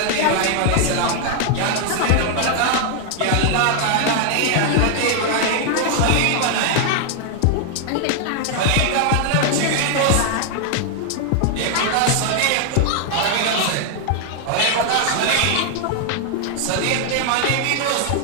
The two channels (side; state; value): both; different; correlation 0.00